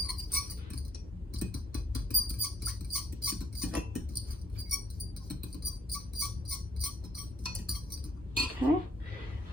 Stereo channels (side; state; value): both; normal; correlation 0.67